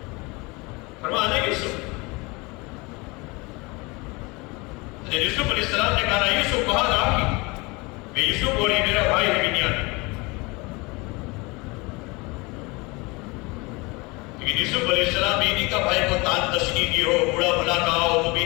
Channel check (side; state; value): right; quieter; 25.7 dB